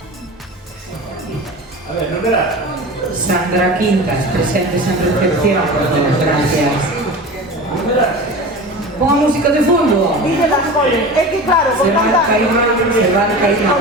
A ver, no verás. Sandra Quintas, presentes en recepción. Gracias. Ponga música de fondo. Dice las coles. Es que claro, con Se va tanta... a caer, se va a caer.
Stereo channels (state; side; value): normal; both; correlation 0.32